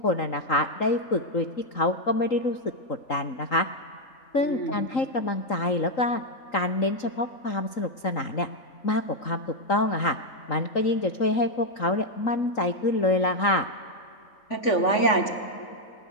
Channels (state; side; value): late; right; 3.8 ms